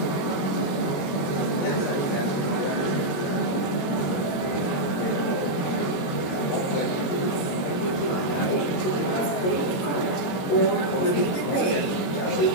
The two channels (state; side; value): late; right; 22 ms